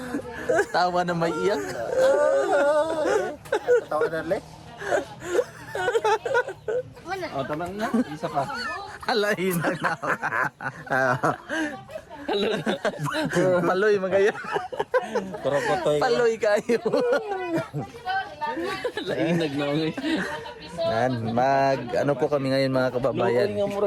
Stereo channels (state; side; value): identical; both; correlation 1.00